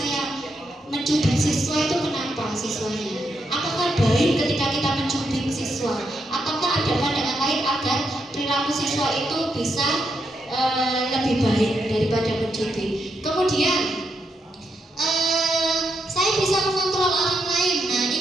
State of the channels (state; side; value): normal; both; correlation 0.81